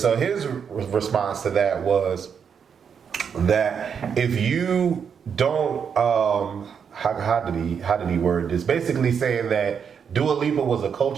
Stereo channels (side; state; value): left; quieter; 7.0 dB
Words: his response to that was that if you don't, how did he word this? Basically saying that Dua Lipa was a